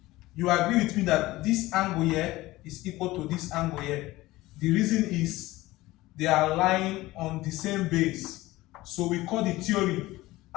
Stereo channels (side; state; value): right; quieter; 18.4 dB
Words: You agree with me that this angle here is equal to this angle here. The reason is they are lying on the same base. So we call the theory